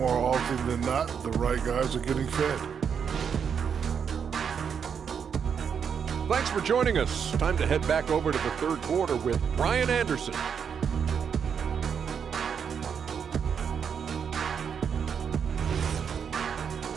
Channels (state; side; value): quieter; left; 7.1 dB